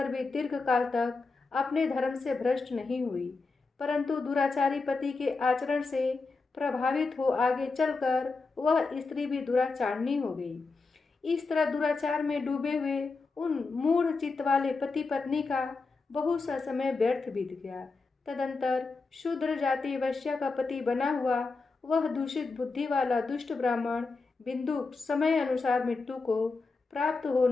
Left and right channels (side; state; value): right; quieter; 4.0 dB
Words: भी दीर्घ काल तक अपने धर्म से भ्रष्ट नहीं हुई, परंतु दुराचारी पति के आचरण से प्रभावित हो आगे चलकर वह स्त्री भी दुराचारणी हो गई। इस तरह दुराचार में डूबे हुए उन मूढ़ चित्त वाले पति पत्नी का बहुत सा समय व्यर्थ बीत गया। तदंतर शूद्र जाति वैश्या का पति बना हुआ वह दूषित बुद्धि वाला दुष्ट ब्राह्मण बिंदुक समय अनुसार मृत्यु को प्राप्त हो